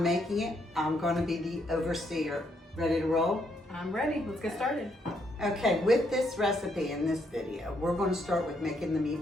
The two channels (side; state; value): both; normal; correlation 0.74